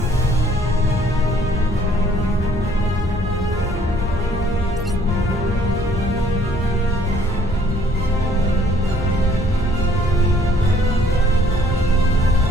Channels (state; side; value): normal; both; correlation 0.61